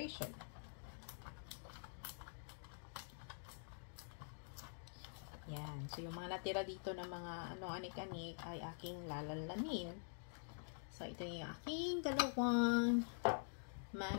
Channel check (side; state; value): right; silent; digital silence